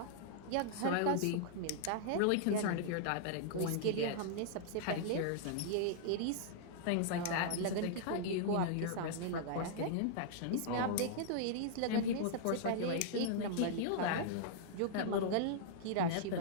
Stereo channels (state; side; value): different; both; correlation -0.01